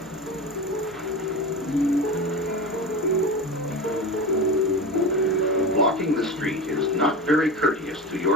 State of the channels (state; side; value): normal; both; correlation 0.27